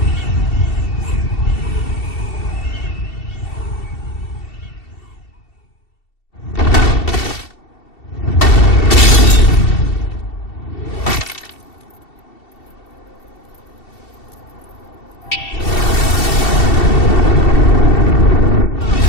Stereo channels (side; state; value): right; late; 2.7 ms